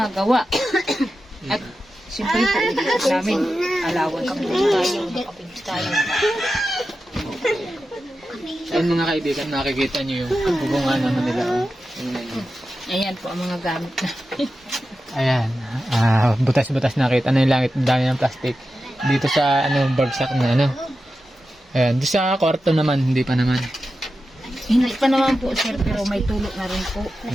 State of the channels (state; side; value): normal; both; correlation 0.91